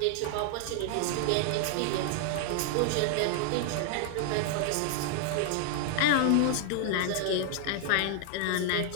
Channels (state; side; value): different; both; correlation 0.00